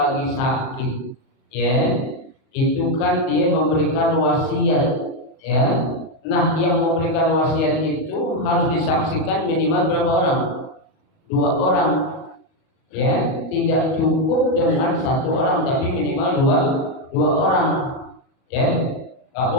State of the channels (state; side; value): late; right; 38 ms